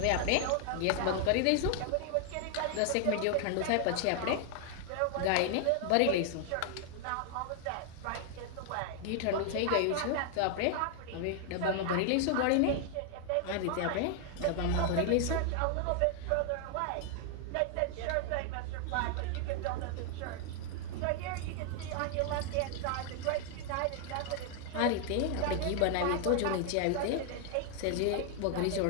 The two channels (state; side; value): different; both; correlation 0.00